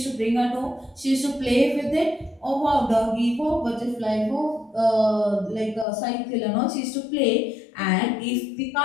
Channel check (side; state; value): right; drops out; at 5.9 s